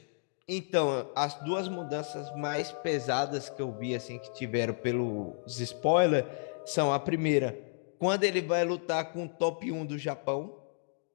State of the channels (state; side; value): silent; right; digital silence